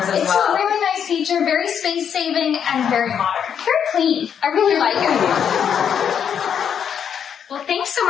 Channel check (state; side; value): quieter; right; 8.1 dB